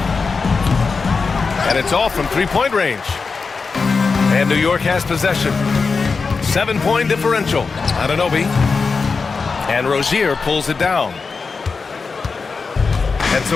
And it's off from three-point range. And New York has possession. 7-point differential. Anunoby. And Rozier pulls it down. And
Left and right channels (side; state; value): right; quieter; 4.7 dB